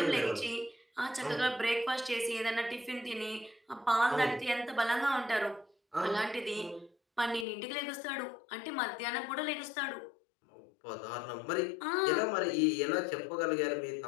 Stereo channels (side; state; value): right; drops out; at 7.5 s